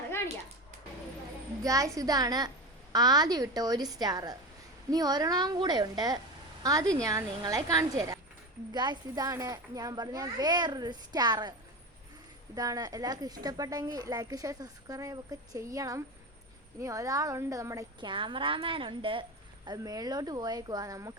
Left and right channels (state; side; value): normal; both; correlation 0.23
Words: കാണിക്കാം. ഗായ്സ്, ഇതാണ് ആദ്യം ഇട്ട ഒരു സ്റ്റാർ. ഇനി ഒരെണ്ണം കൂടെ ഉണ്ട്, അത് ഞാൻ നിങ്ങളെ കാണിച്ചു തരാം. ഗായ്സ്, ഇതാണ് ഞാൻ പറഞ്ഞ വേറൊരു സ്റ്റാർ. ഇതാണ്. എല്ലാവർക്കും ഇഷ്ടപ്പെട്ടെങ്കിൽ ലൈക്ക് ഷെയർ സബ്സ്ക്രൈബ് ഒക്കെ ചെയ്യണം. ഇനി ഒരാളുണ്ട്, നമ്മുടെ ക്യാമറാമാൻ ഉണ്ട്. അത് മേളിലോട്ട് പോയേക്കുവാ.